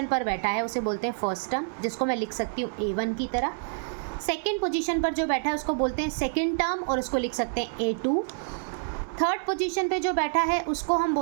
पर बैठा है उसे बोलते हैं फर्स्ट टर्म, जिसको मैं लिख सकती हूँ A1 की तरह। सेकंड पोजीशन पर जो बैठा है उसको बोलते हैं सेकंड टर्म, और उसको लिख सकते हैं A2। थर्ड पोजीशन पे जो बैठा है उसको हम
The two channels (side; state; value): left; silent; 60 dB below the other